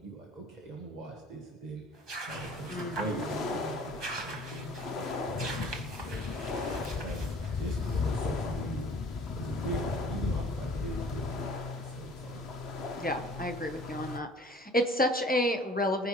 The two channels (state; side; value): normal; both; correlation 0.50